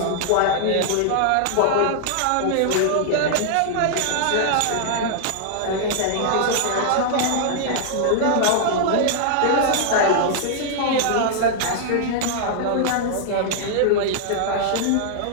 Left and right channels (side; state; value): both; different; correlation -0.01